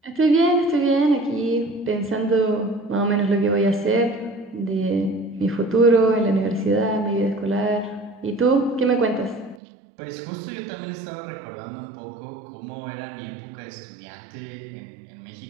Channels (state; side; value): drops out; left; at 9.6 s